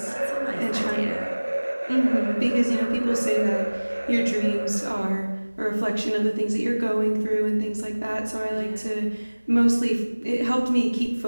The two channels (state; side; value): inverted; both; correlation -1.00